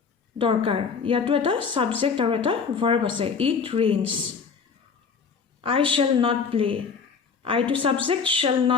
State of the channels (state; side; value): quieter; right; 5.7 dB